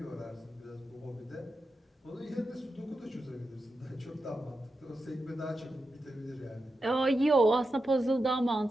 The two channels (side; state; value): both; normal; correlation 0.89